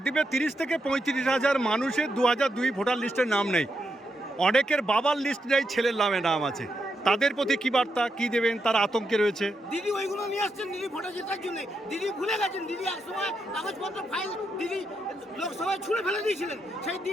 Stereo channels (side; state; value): both; normal; correlation 0.83